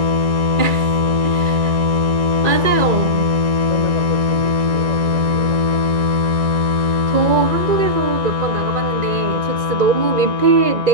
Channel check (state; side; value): late; left; 2.4 ms